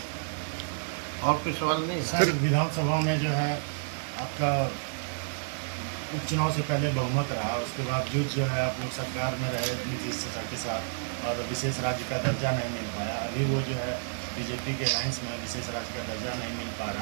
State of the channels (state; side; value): silent; left; digital silence